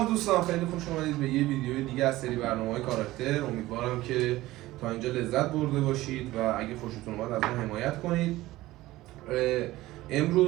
دوستان، خیلی خوش اومدید به یه ویدیو دیگه از سری برنامه‌های کاراکتر. امیدوارم که تا اینجا لذت برده باشید و اگه خوشتون اومد از ما حمایت کنید.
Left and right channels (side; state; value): left; quieter; 17.4 dB